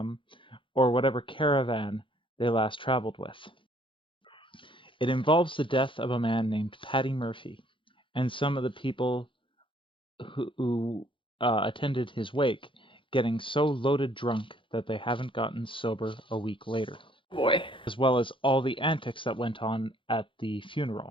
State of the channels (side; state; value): right; late; 0.25 ms